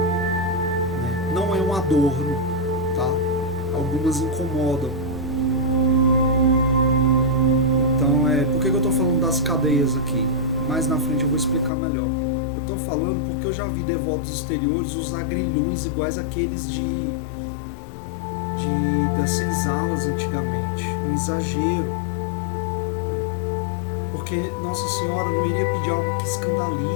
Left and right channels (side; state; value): right; drops out; at 11.7 s